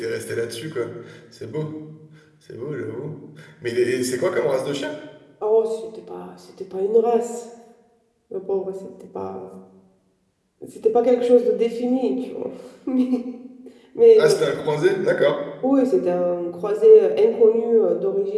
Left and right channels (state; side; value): identical; both; correlation 1.00